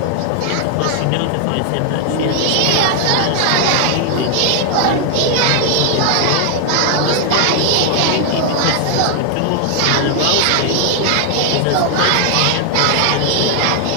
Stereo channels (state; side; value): different; both; correlation 0.00